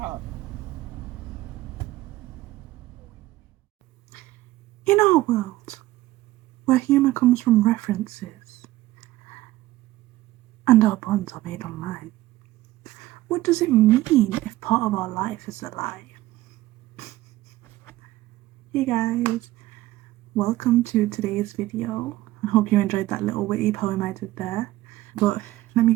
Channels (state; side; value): quieter; left; 16.5 dB